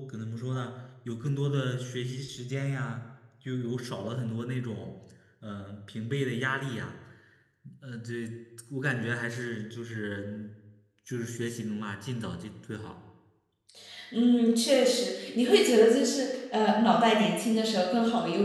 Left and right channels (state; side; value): identical; both; correlation 1.00